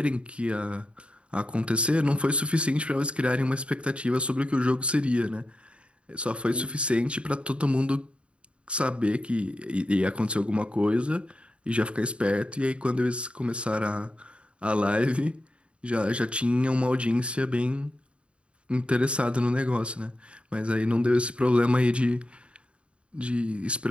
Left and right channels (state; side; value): late; left; 0.058 ms